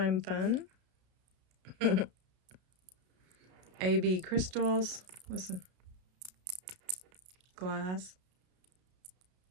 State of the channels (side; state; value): left; late; 32 ms